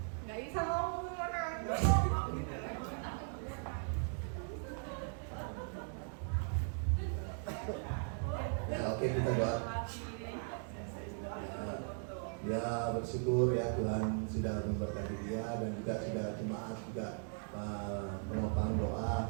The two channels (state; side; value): silent; left; 52 dB below the other